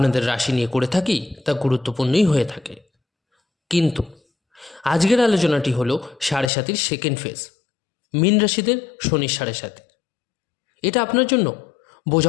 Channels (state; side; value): drops out; right; at 6.5 s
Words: রাশি নিয়ে করে থাকি তা গুরুত্বপূর্ণই হয়ে থাকে, কিন্তু আজকের আলোচনাটি হলো 7.5 সেকেন্ড ফেজ, মীন রাশিদের শনির 7.5। এটা আপনার জন্য